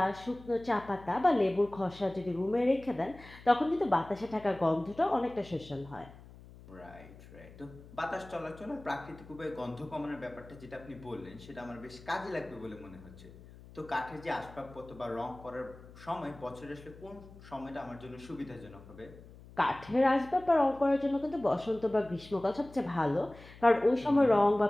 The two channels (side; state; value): left; noise; hum, 19 dB below the sound